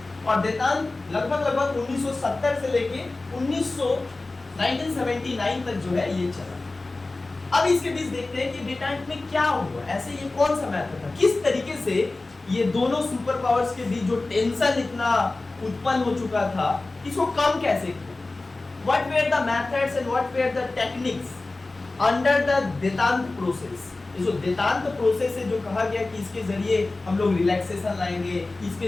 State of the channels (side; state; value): right; quieter; 3.2 dB